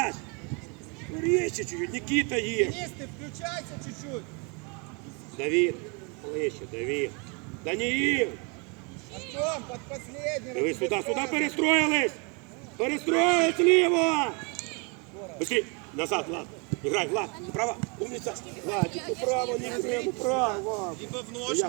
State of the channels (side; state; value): left; quieter; 33.0 dB